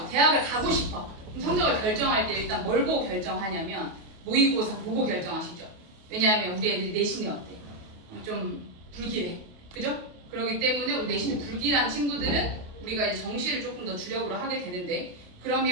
대학을 가고 싶어. 그럼 성적을 결정할 때 일단 뭘 보고 결정하냐면, 모의고사 보고 결정하시죠. 왜냐하면 우리 애들이 내신이 어때? 좀 불길해. 그죠? 그렇기 때문에 우리 내신이 불길한 친구들은 우리가 이제 정시를 조금 더 주력으로 하게 되는데,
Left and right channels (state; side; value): late; left; 28 ms